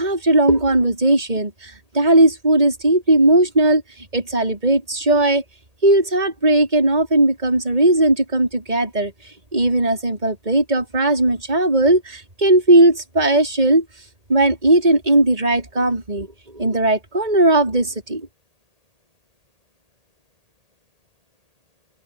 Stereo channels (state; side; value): late; left; 2.1 ms